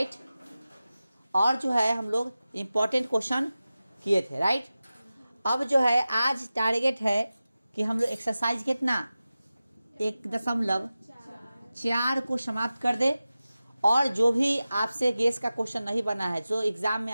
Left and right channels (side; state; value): both; inverted; correlation -0.95